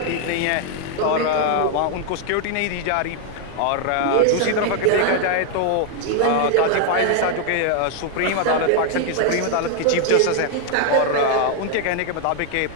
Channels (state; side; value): different; both; correlation 0.00